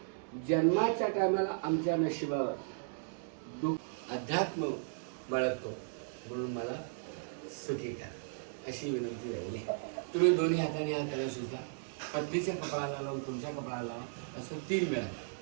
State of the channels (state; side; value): silent; left; digital silence